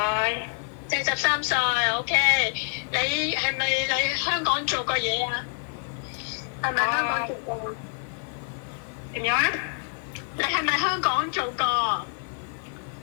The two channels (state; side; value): silent; right; 60 dB below the other